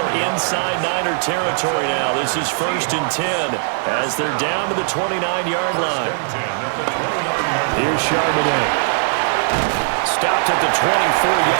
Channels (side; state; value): left; silent; 66 dB below the other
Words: inside Niner territory now, this is 1st and 10 as they're down to the 29-yard line. Here's Charbonnet. Stopped at the